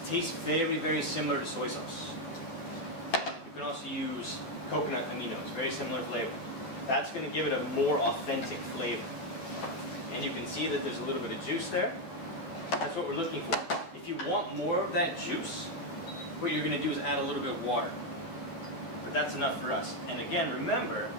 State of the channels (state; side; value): late; right; 12 ms